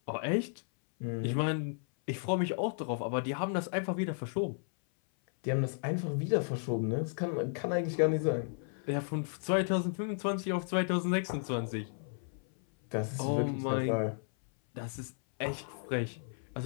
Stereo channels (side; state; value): right; silent; 55 dB below the other